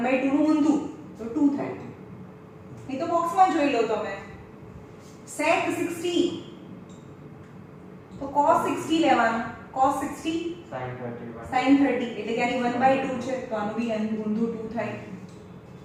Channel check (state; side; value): identical; both; correlation 1.00